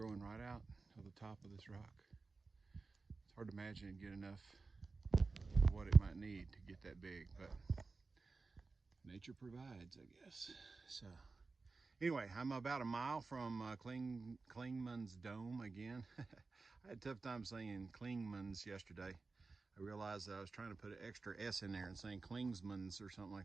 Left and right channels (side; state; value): left; quieter; 4.0 dB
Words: right out of the top of this rock. It's hard to imagine it'd get enough of what it might need to get that big, but nature provides, I guess. So anyway, I'm about a mile from Clingman's Dome again. I had a tough time saying Clingman's yesterday. I realized that I was trying to put an extra S in there and saying Klingsman's or something